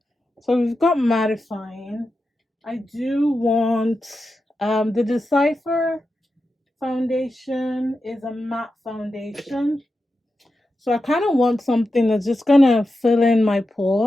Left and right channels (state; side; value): normal; both; correlation 0.90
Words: So we've got mattifying. I do want the Decipher foundation is a matte foundation. So I kind of want something that's just gonna fill in my